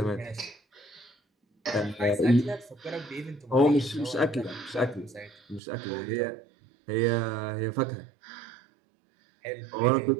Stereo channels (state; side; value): drops out; left; at 5.6 s